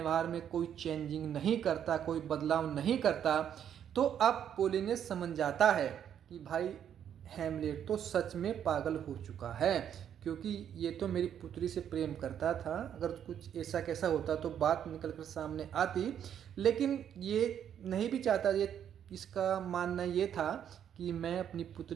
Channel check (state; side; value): quieter; left; 9.3 dB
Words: में कोई चेंजिंग नहीं करता, कोई बदलाव नहीं करता। तो अब पोलिनियस समझ जाता है कि भाई हैमलेट तो सच में पागल हो चुका है, क्योंकि ये तो मेरी पुत्री से प्रेम करता था। अगर कुछ ऐसा कैसा होता तो बात निकल कर सामने आती, लेकिन ये नहीं भी चाहता। ये इसका मानना ये था कि मैं अपनी